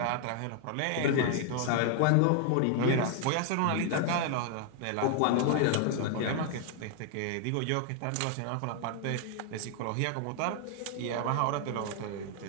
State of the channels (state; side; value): different; both; correlation 0.00